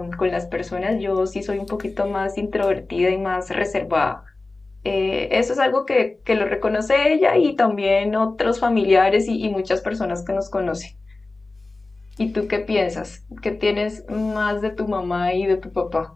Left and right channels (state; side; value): quieter; right; 3.3 dB